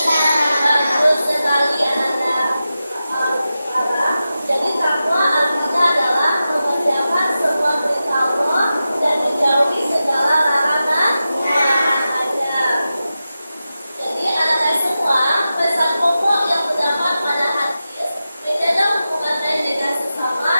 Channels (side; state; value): both; inverted; correlation -0.92